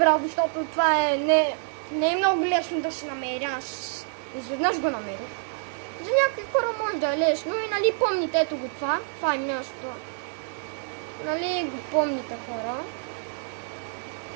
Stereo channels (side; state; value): left; silent; digital silence